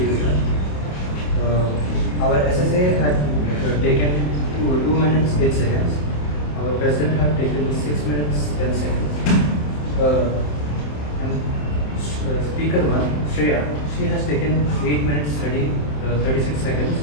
our SSA had taken 2 minutes 8 seconds. Our president had taken 6 minutes 10 seconds. And speaker 1, Shreya, she has taken 8 minutes 36 seconds.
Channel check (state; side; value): late; right; 27 ms